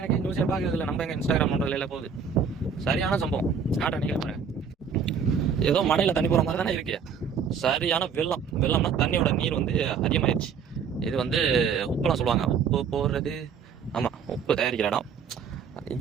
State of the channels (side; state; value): left; quieter; 6.5 dB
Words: நியூஸே பார்க்கறது இல்லை. நம்ம எங்கள் இன்ஸ்டாகிராம் நோண்டில் போகுது. சரியான சம்பவம். காட்ட நினைக்கிறேன். ஏதோ மழையில் தண்ணி போகிற மாதிரி தானே இருக்கு. சரியான வெள்ளம்னா தண்ணியோட நீர் வந்து அதிகமாகிடுச்சு. இது வந்து உப்புலாம் சொல்லுவாங்க. உப்பு போடுறது, ஆமாம், உப்பு தயாரிக்கிற இடம்.